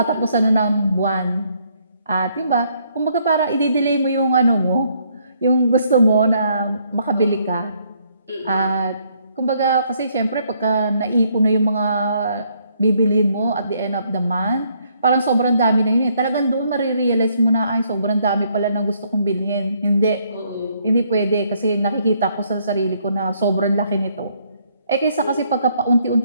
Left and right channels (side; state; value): both; inverted; correlation -0.69